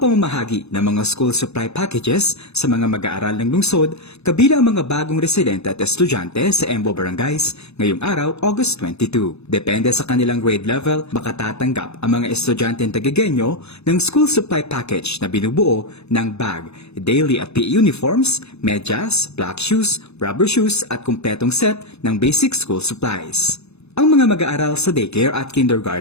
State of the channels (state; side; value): late; right; 0.80 ms